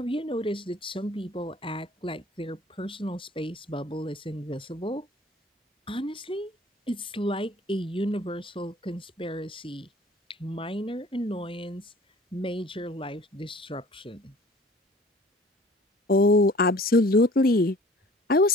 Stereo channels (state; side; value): normal; both; correlation 0.49